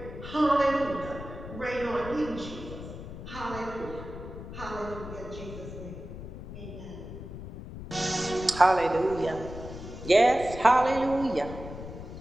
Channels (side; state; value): left; noise; rumble, 11 dB below the sound